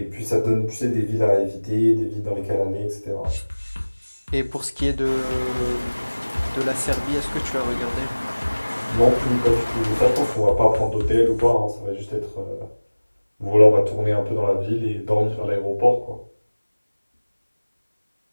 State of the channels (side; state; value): both; inverted; correlation -1.00